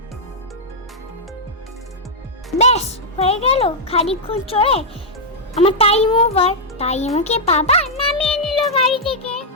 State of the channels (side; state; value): both; normal; correlation -0.05